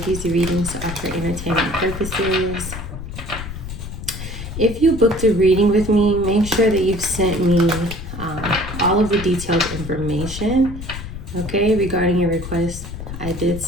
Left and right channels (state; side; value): noise; left; rumble, 9 dB below the sound